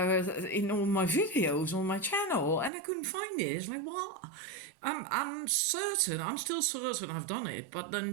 my videos on my channel, and I couldn't find it. It's like, what? I'm certain, I'm still certain I've done it, but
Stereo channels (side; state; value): left; drops out; at 2.7 s